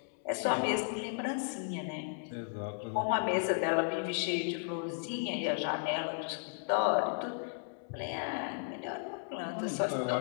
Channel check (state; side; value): silent; right; digital silence